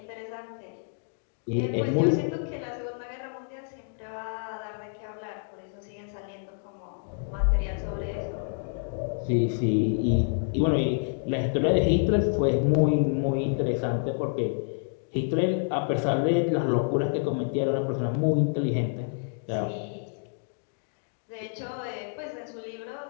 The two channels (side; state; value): right; silent; digital silence